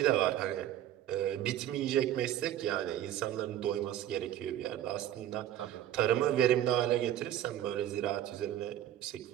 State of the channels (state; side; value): quieter; left; 11.9 dB